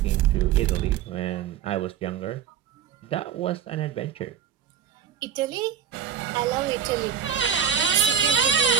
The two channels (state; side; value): quieter; left; 8.8 dB